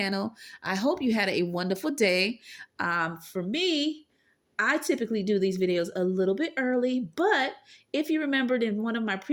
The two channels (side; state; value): both; identical; correlation 1.00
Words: I hope you had a wonderful day. For me, I typically do these videos a little bit early, but if you remembered in one of my